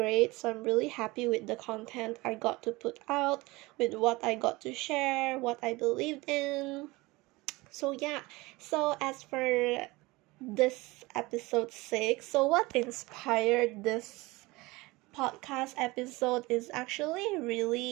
So I'm really happy with the content I got to put out, with what I got to share, what I believed in. So as for this episode 6, so what inspired this podcast episode is actually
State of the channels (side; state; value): left; quieter; 22.1 dB